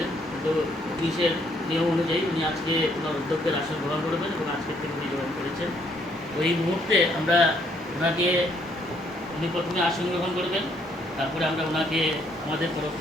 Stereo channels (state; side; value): normal; both; correlation 0.68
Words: কিন্তু অফিসের নিয়ম অনুযায়ী উনি আজকে ওনার অধ্যক্ষের আসন গ্রহণ করবেন এবং আজকের থেকে উনি গ্রহণ করেছেন। ওই মুহূর্তে আমরা ওনাকে, উনি প্রথমে আসন গ্রহণ করবেন, তারপরে আমরা ওনাকে আমাদের তরফ